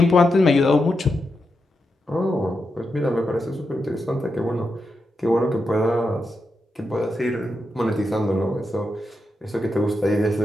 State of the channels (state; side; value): normal; both; correlation 0.86